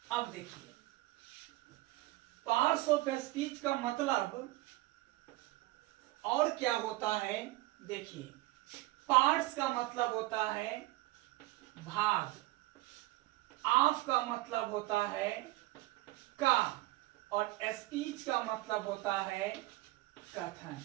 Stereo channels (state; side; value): quieter; left; 19.0 dB